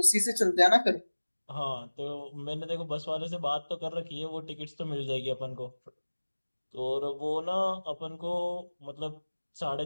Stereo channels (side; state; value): both; inverted; correlation -1.00